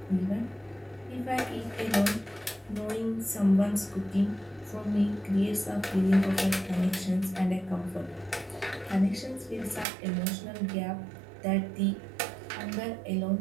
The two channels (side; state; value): left; drops out; at 9.9 s